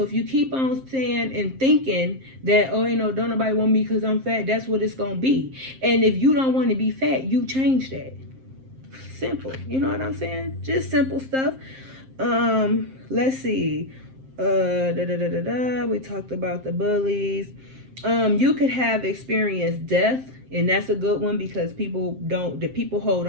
if you keep on saying and thinking that, oh, you know, don't nobody want me because I'm fat, that's what it's going to be. And if you don't want to be fat, you change that. Simple. You know what I'm saying? Just simple stuff. Let's see. We talked about the bullies. You could have experienced death, and that's a good one because people hold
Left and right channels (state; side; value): late; left; 7.6 ms